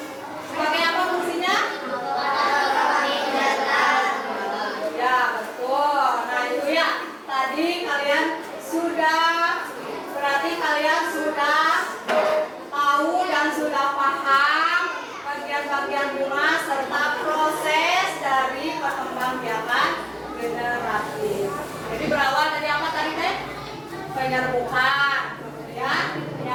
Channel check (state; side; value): identical; both; correlation 1.00